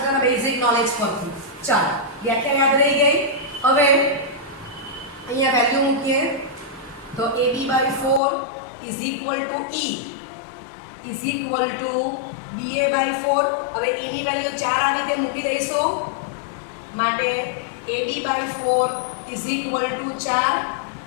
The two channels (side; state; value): right; drops out; at 8.2 s